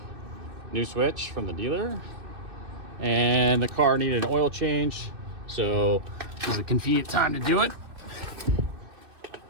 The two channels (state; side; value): late; left; 2.6 ms